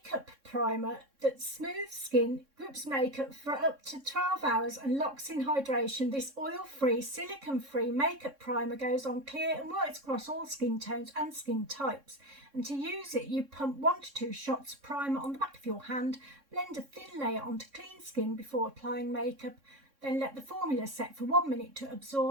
primer that smooths skin, grips makeup for up to 12 hours and locks in hydration. This oil-free, silicone-free makeup primer goes on clear and works across all skin tones and skin types. And to use it, you pump 1 to 2 shots of primer on the back of your hand, blend a thin layer onto clean skin before applying makeup, then let the formula set for 1 minute to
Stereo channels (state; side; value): late; left; 3.6 ms